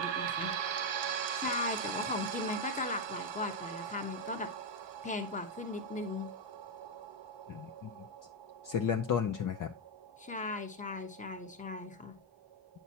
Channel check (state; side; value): normal; both; correlation 0.03